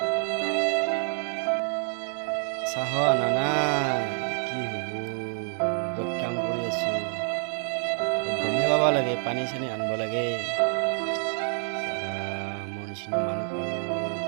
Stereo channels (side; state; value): left; silent; 57 dB below the other